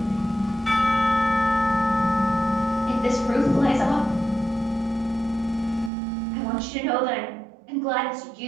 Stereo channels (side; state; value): left; drops out; at 5.9 s